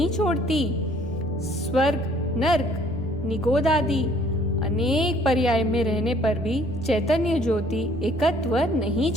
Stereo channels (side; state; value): both; normal; correlation 0.59